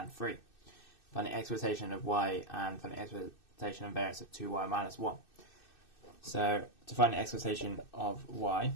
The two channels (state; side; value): late; right; 2.6 ms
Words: 3. Find the expectation of y and find the expectation of variance of 2y minus 1. So to find the expectation of y,